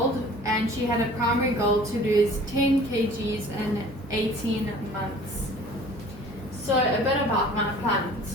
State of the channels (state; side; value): normal; both; correlation 0.48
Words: and she had a primary goal to lose 10 kgs in 18 months. So a bit about my